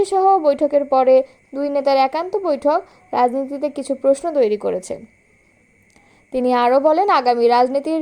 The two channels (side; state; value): both; identical; correlation 1.00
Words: সহ বৈঠকের পরে দুই নেতার একান্ত বৈঠক রাজনীতিতে কিছু প্রশ্ন তৈরি করেছে। তিনি আরও বলেন, আগামী রাজনীতির